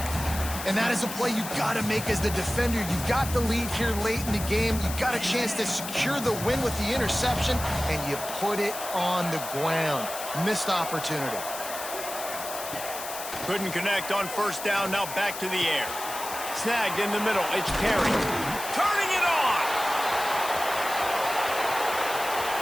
And that is a play you've got to make as the defender. You've got the lead here late in the game. You've got a chance to secure the win with the interception, and you put it on the ground. Missed opportunity. Couldn't connect on first down, now back to the air. Snagged in the middle, it's Perry. Turning it on!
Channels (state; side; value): noise; left; hiss, 9 dB below the sound